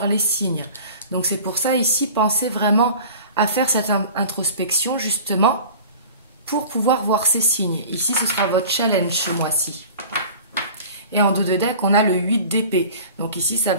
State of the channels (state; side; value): inverted; both; correlation -0.41